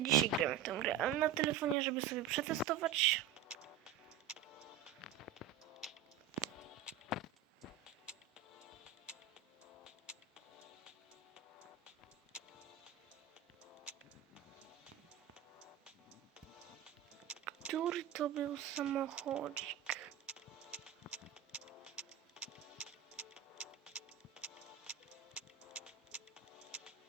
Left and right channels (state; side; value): quieter; left; 9.5 dB